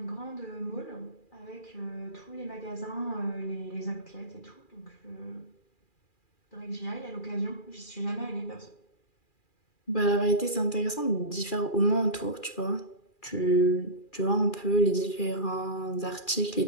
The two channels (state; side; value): late; right; 2.4 ms